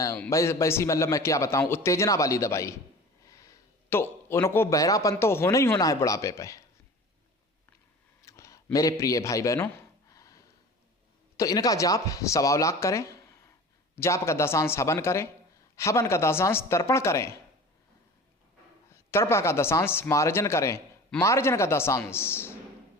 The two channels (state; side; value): normal; both; correlation 0.39